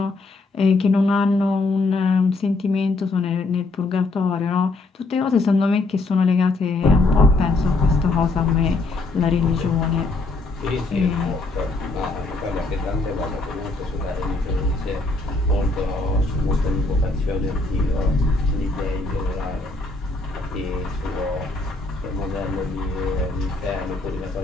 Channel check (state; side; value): quieter; right; 3.3 dB